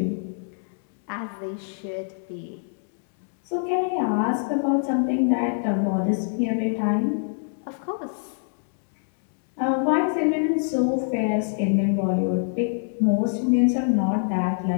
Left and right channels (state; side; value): silent; right; 62 dB below the other